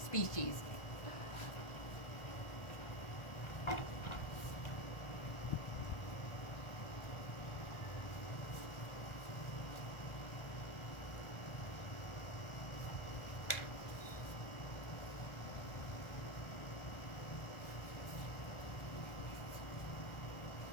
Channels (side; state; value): right; late; 1.4 ms